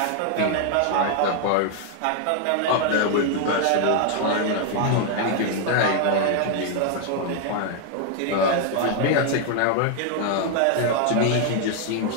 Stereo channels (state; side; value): different; both; correlation 0.00